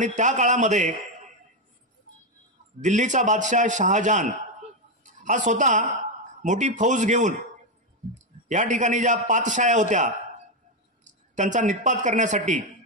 त्या काळामध्ये दिल्लीचा बादशाह शहाजहान हा स्वतः मोठी फौज घेऊन या ठिकाणी ज्या पातशाया होत्या त्यांचा निःपात करण्यासाठी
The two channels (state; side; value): normal; both; correlation 0.06